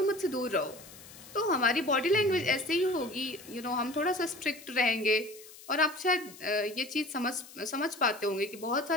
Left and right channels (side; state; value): left; noise; hiss, 19 dB below the sound